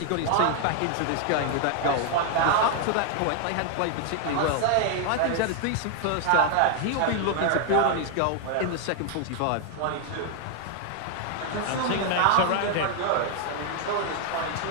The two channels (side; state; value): both; different; correlation 0.00